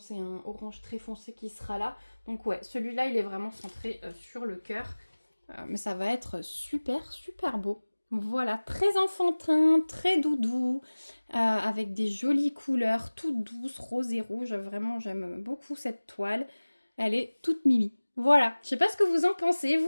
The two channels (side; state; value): both; inverted; correlation -1.00